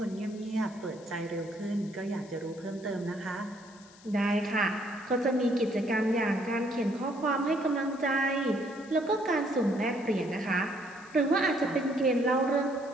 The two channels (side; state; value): left; noise; hiss, 24 dB below the sound